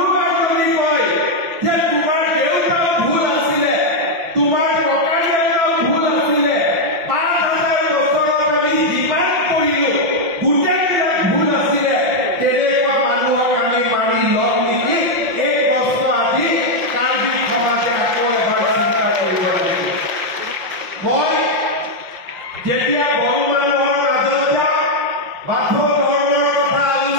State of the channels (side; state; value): left; late; 5.6 ms